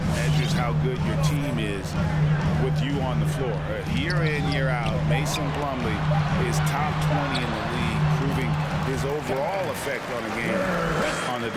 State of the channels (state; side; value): identical; both; correlation 1.00